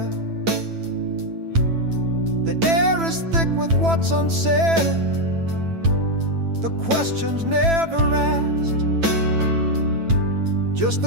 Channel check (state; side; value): late; left; 9.0 ms